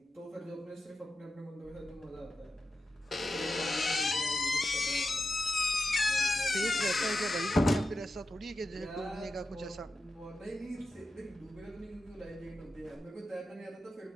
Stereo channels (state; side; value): normal; both; correlation 0.91